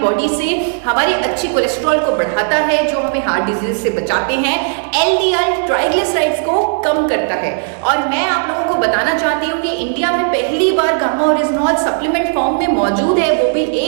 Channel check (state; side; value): silent; left; digital silence